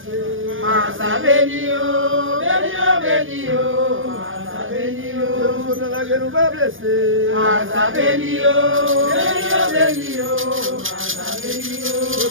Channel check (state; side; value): late; left; 0.58 ms